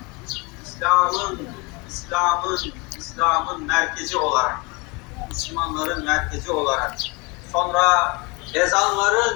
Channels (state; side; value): quieter; right; 27.9 dB